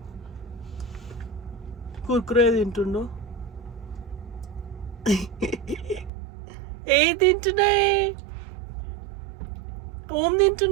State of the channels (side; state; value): left; drops out; at 6.1 s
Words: కుర్కురే తింటుండు. ఏ తింటున్నాయి? ఓం